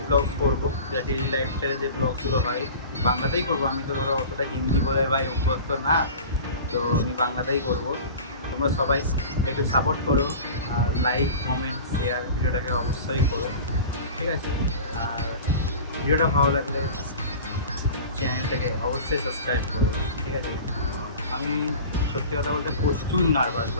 ব্লগস করবো, যা ডেলি লাইফস্টাইলে যে ব্লগসগুলো হয় বাংলাতেই করবো। আমি তো ধরো অতটা হিন্দি বলে ভাই অভ্যস্ত না, তো আমি বাংলাতেই করবো। তোমরা সবাই একটু সাপোর্ট করো, আর লাইক কমেন্ট শেয়ার ভিডিওটাকে অবশ্যই করো, ঠিক আছে? আর ভিডিওটা ভালো লাগলে চ্যানেলটাকে অবশ্যই সাবস্ক্রাইব করো, ঠিক আছে? আমি সত্যি কথা বলতে প্রচুর নার্ভাস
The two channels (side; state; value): both; inverted; correlation -0.37